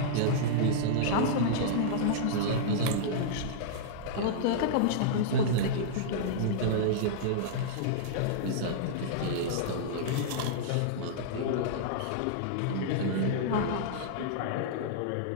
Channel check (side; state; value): both; different; correlation -0.02